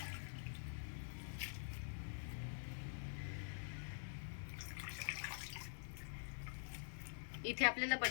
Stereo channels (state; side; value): silent; right; digital silence